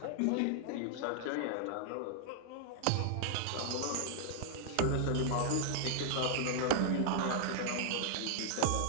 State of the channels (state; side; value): different; both; correlation -0.01